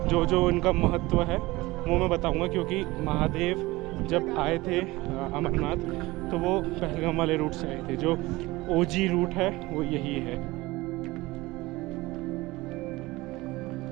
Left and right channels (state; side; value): quieter; left; 20.4 dB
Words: जो जो उनका महत्व है वो मैं बताऊंगा, क्योंकि महादेव जब आए थे अमरनाथ तो वो पहलगाम वाले रूट से आए थे। जो ओजी रूट है वो यही है।